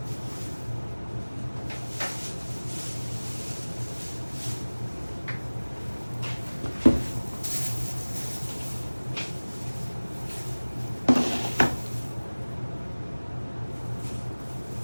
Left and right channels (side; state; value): both; inverted; correlation -1.00